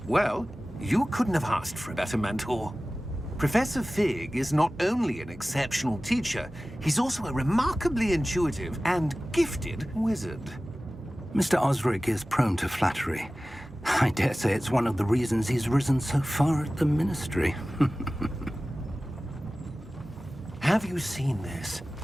Well, you couldn't have asked for a better mentor. Professor Fig is not only an exceptional teacher, he's also a remarkably intuitive and gifted wizard. Mr. Osric is prone to flattery. I dare say it's one of the reasons he's risen so far at the Ministry. Have you seen this?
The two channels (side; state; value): both; normal; correlation 0.97